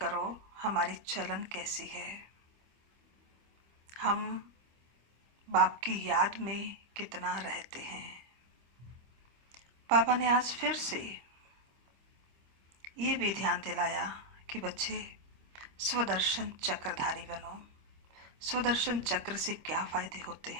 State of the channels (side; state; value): left; late; 25 ms